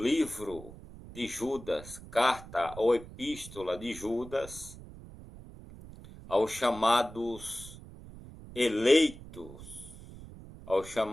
livro de Judas, carta ou epístola de Judas aos chamados eleitos, aos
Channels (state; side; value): noise; right; rumble, 16 dB below the sound